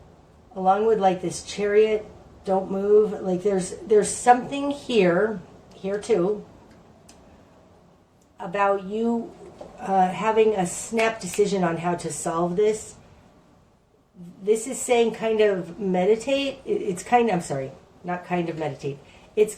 along with like this Chariot, don't move, like there's something here too, about you having a snap decision on how to solve this. This is saying kind of meditate. It's kind of, I'm sorry, not kind of meditate. It's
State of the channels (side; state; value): both; identical; correlation 1.00